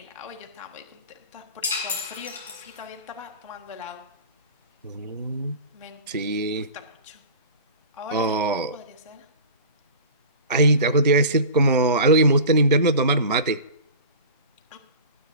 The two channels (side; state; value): both; inverted; correlation -0.36